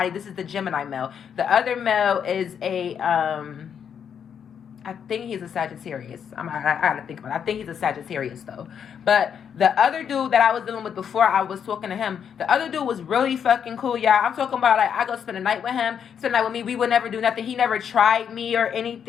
Gemini male. The other male is I think he's a Sagittarius. I gotta think about it. I think he's a Sagittarius, though. But the other dude that I was dealing with before I was talking to him, the other dude was really fucking cool, y'all. I'm talking about, like, I go spend a night with him, spend a night with me. We would never do nothing. He never tried me or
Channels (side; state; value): right; quieter; 7.9 dB